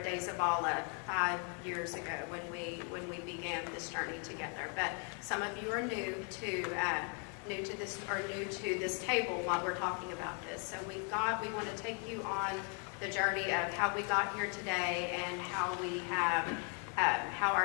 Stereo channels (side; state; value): right; quieter; 39.2 dB